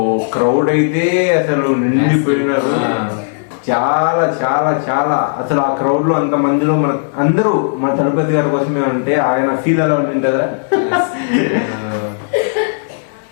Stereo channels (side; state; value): right; silent; 60 dB below the other